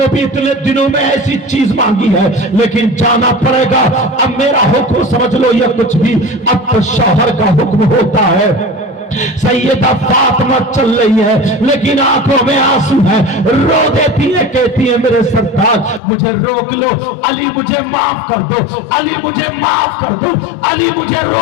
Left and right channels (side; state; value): right; drops out; at 16.0 s